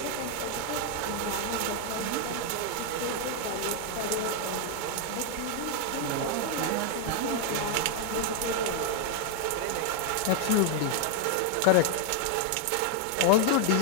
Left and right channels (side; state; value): both; different; correlation 0.00